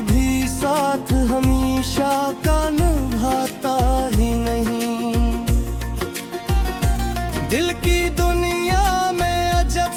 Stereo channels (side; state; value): both; identical; correlation 1.00